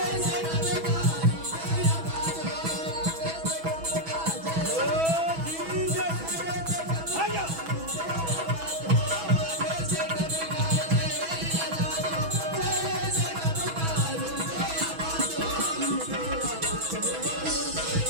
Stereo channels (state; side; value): late; left; 6.1 ms